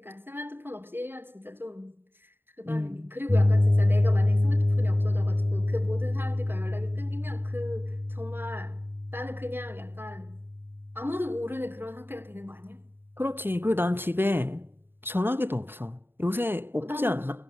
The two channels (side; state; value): left; late; 0.10 ms